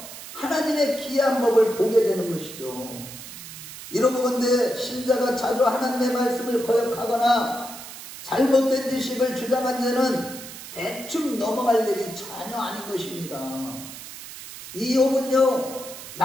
하나님의 귀한 법을 보게 되는 것이죠. 이러고 본데 신자가 자주 하나님의 말씀을 거역하거나 잘못된 지식을 주장한 자는 대충 넘어갈 일이 전혀 아닌 것입니다. 이 욥은요,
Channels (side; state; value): right; noise; hiss, 13 dB below the sound